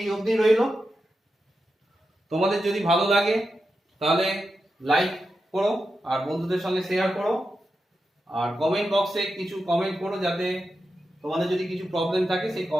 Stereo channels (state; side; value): normal; both; correlation 0.89